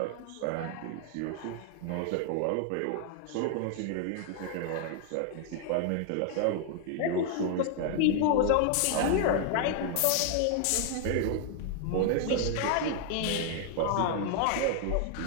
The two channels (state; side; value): different; both; correlation 0.00